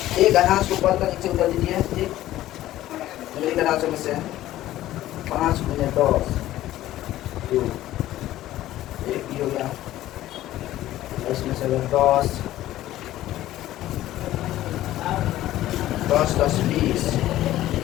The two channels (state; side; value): quieter; right; 14.4 dB